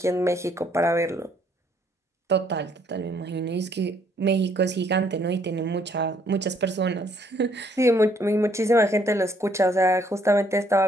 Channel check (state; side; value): normal; both; correlation 0.66